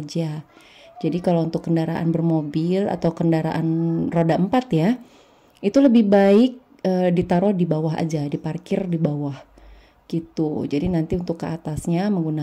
Jadi kalau untuk kendaraan bermobil atau kendaraan roda 4 ya, itu lebih baik ditaruh di bawah aja, diparkir di bawah gitu. Jadi nanti untuk ke atasnya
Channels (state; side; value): identical; both; correlation 1.00